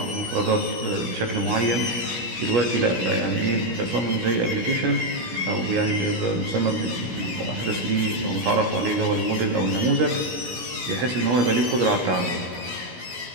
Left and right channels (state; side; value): late; left; 17 ms